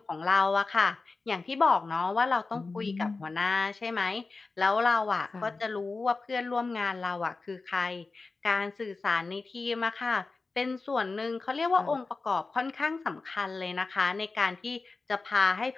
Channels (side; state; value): right; quieter; 3.9 dB